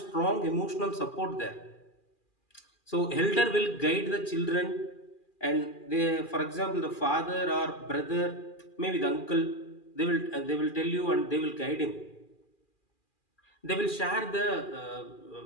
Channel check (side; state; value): right; late; 2.4 ms